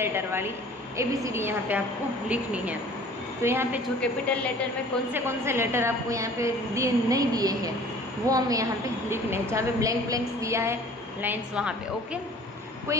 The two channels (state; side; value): normal; both; correlation 0.48